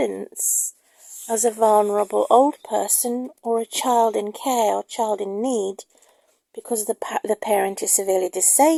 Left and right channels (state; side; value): identical; both; correlation 1.00